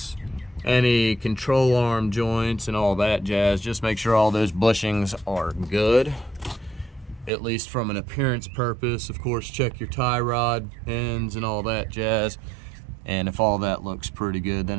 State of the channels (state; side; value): drops out; left; at 7.3 s